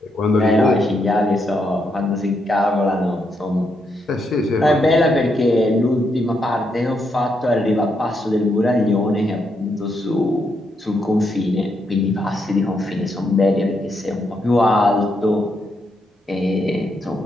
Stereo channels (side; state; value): both; normal; correlation 0.79